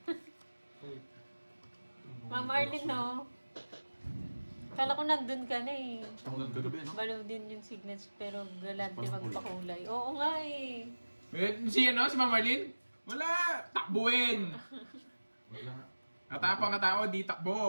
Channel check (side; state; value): both; inverted; correlation -1.00